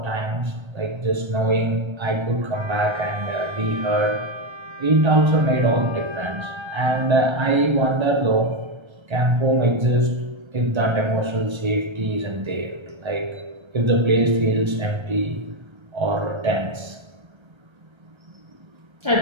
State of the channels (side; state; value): left; late; 1.3 ms